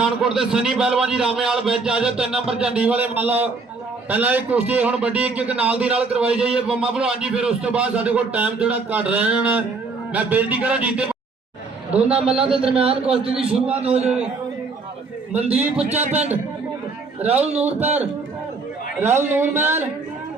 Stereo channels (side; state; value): left; quieter; 4.1 dB